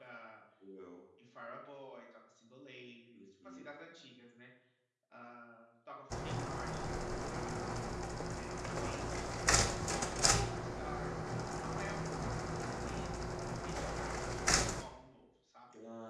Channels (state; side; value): identical; both; correlation 1.00